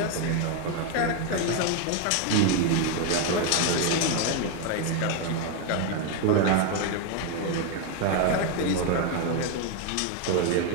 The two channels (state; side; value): different; both; correlation 0.01